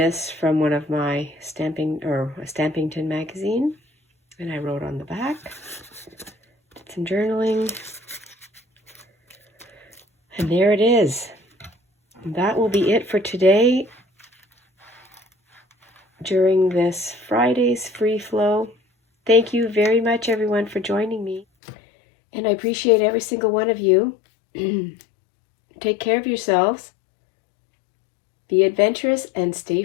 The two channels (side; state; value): right; drops out; at 21.5 s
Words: from one of my stamping, or a Stampington magazine, and I wrote on the back. Did some journaling. And there it is. That will be it for today during this Friday's free flow. Thank you very much, everyone, for joining me. And I appreciate every single one of you. Take care of yourselves. Be adventurous and stay